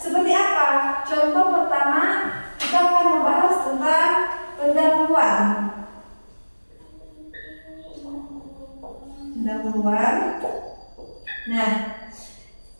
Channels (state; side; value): inverted; both; correlation -1.00